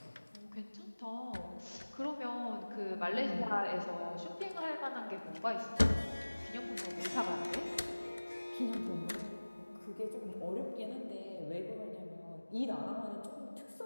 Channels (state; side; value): inverted; both; correlation -1.00